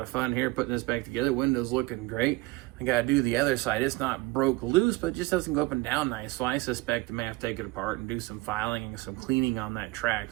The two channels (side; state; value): left; quieter; 22.0 dB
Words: of fun here putting this back together. Windows looking great. I got to do the other side. It's not broke loose, but it just doesn't go up and down nice. So I suspect I may have to take it apart and do some filing and some cleaning on that track.